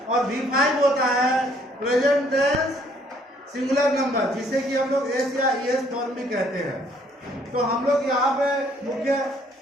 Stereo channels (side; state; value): both; normal; correlation 0.63